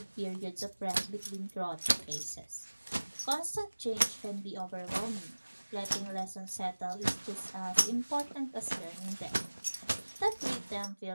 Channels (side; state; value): both; inverted; correlation -1.00